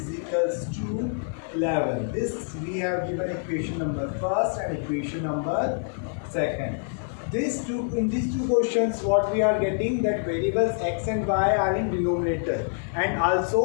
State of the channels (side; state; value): right; silent; digital silence